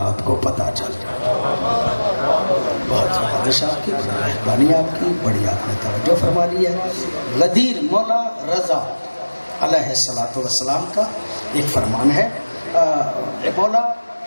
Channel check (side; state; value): both; inverted; correlation -1.00